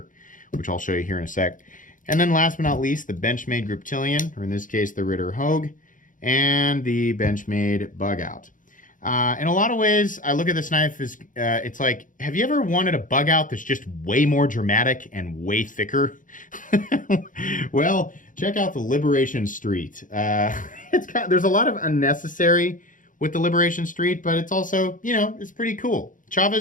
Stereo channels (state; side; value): late; right; 0.38 ms